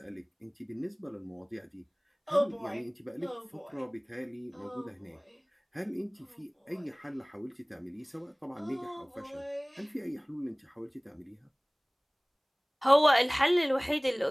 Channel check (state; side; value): identical; both; correlation 1.00